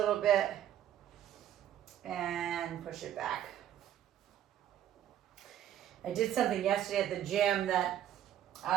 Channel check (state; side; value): quieter; left; 11.1 dB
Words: bit and push it back. I did something yesterday at the gym that